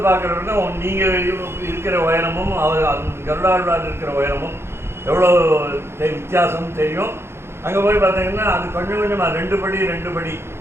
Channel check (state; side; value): late; left; 0.12 ms